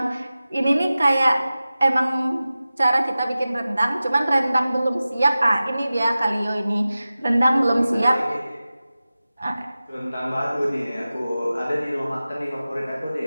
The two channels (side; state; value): both; inverted; correlation -0.95